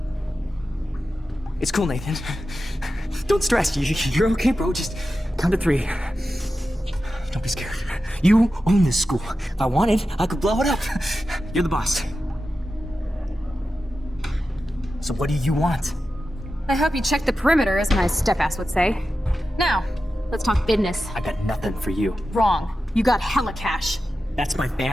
It's cool, Nathan. Don't stress. You're okay, bro. Just count to 3. Don't be scared. You own this school. If I wanted, I could blow it up. You're the boss. So what do you want? I hope you checked the perimeter, as my step-ass would say. Now, let's talk business. I got nothing for you. Wrong. You got hella cash. That's my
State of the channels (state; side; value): normal; both; correlation 0.92